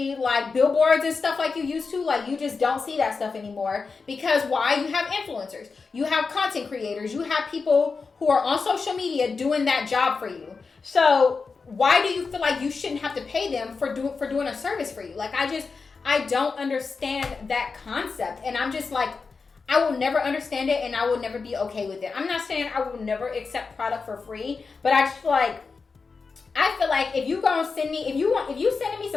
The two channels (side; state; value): right; quieter; 4.7 dB